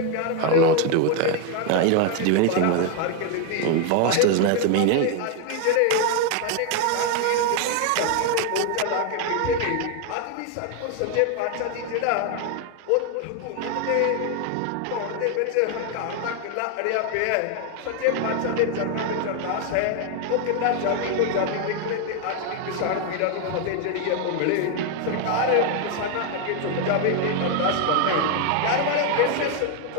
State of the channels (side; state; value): both; different; correlation 0.01